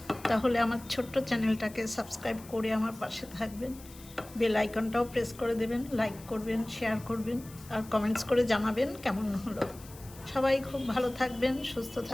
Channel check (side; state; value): left; noise; hiss, 20 dB below the sound